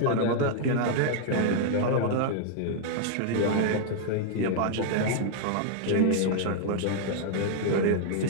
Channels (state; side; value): different; both; correlation -0.01